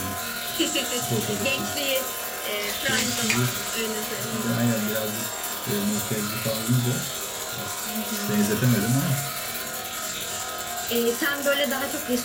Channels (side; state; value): both; identical; correlation 1.00